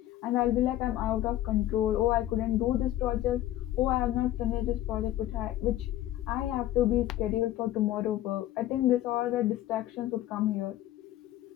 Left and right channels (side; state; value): right; quieter; 13.9 dB